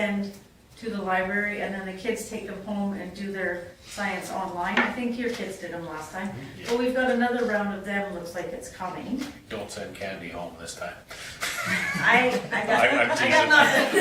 to the library, and then the kids take them home and do their science online. I think your kids did them last time. But we've got another round of them, looks like it's coming. Don't send candy home this time. I I'm got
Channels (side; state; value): both; identical; correlation 1.00